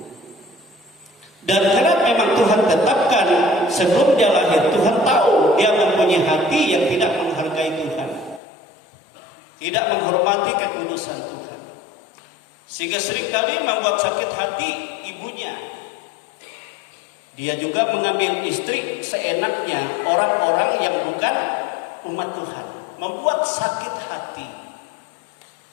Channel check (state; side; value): drops out; right; at 8.4 s